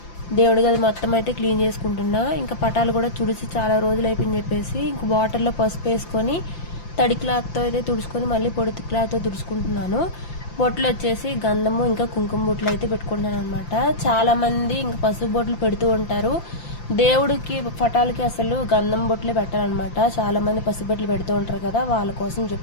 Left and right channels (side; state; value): right; late; 5.8 ms